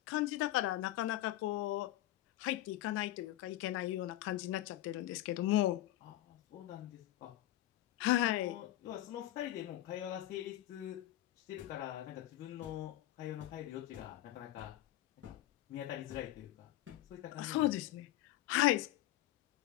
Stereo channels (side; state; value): right; quieter; 15.0 dB